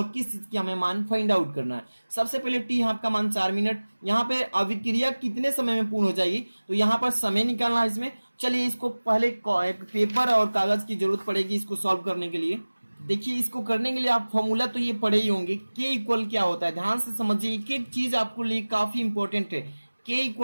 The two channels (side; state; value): both; inverted; correlation -1.00